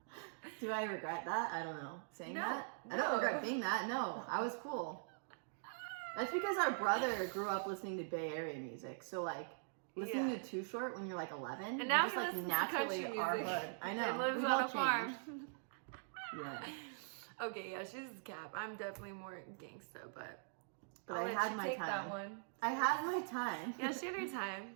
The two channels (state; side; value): silent; left; digital silence